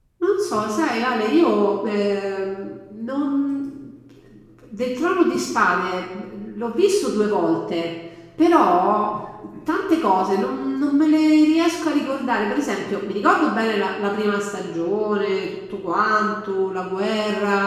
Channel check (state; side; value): identical; both; correlation 1.00